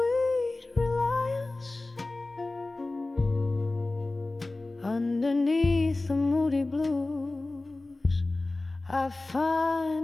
reliance. Underneath the moody blues, I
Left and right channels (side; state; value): right; quieter; 3.0 dB